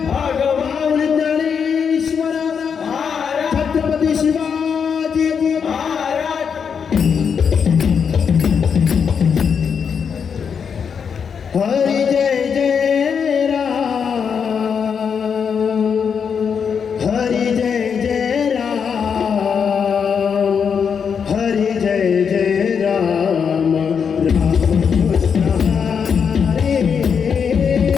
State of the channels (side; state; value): right; quieter; 6.7 dB